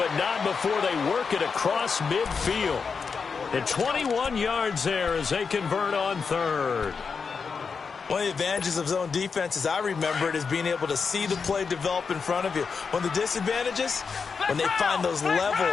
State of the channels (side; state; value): right; quieter; 5.4 dB